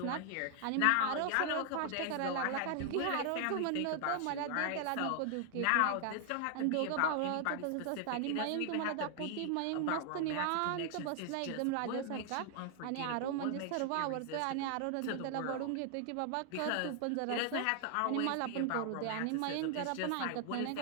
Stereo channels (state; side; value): different; both; correlation 0.00